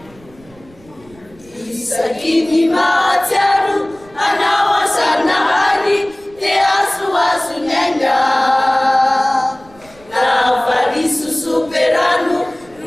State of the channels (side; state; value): right; noise; rumble, 26 dB below the sound